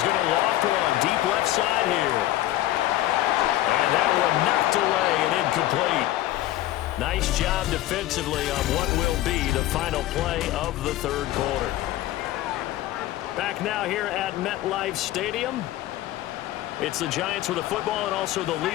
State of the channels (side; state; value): right; quieter; 15.0 dB